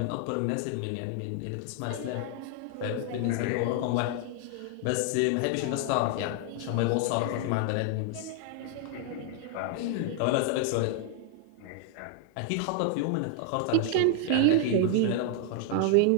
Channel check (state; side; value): different; both; correlation 0.00